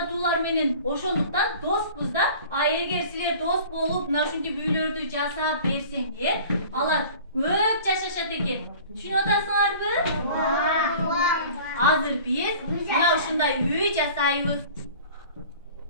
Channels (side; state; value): both; inverted; correlation -0.44